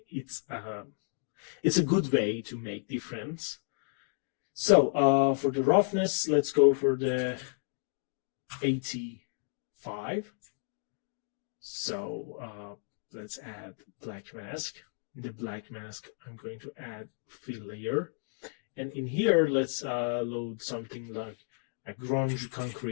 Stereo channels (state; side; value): silent; right; digital silence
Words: It's a good way to make difference. So for the roughness, let's go for the 85. So let's add black mask. In the black mask, I'm going to add fill layer. And in here, let's load something like a grunge